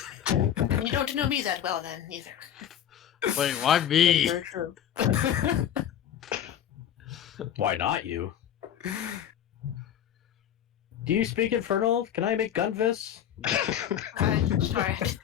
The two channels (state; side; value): quieter; right; 10.1 dB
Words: You don't know me that well, then, either. Wait, why me? Very true. why not you? Do you speak Infernal? Can I make gun fists? Sorry.